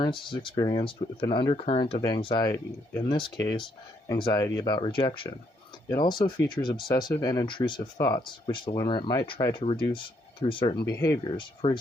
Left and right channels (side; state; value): both; normal; correlation 0.73